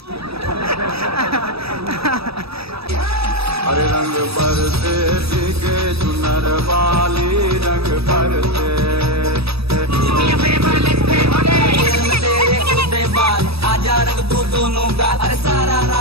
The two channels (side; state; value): left; late; 0.78 ms